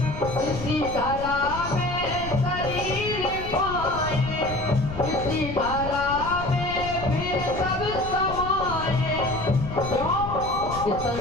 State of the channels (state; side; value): noise; left; rumble, 9 dB below the sound